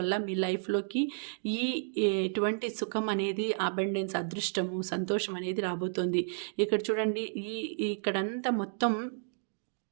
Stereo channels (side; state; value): left; silent; digital silence